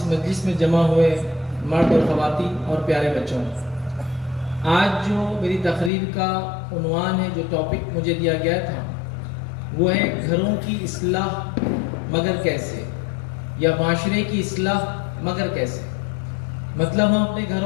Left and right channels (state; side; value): drops out; right; at 5.9 s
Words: مجلس میں جمع ہوئے مرد اور خواتین اور پیارے بچوں، آج جو میری تقریر کا عنوان ہے، جو ٹاپک مجھے دیا گیا تھا، وہ ہے گھروں کی اصلاح مگر کیسے، یا معاشرے کی اصلاح مگر کیسے. مطلب ہم اپنے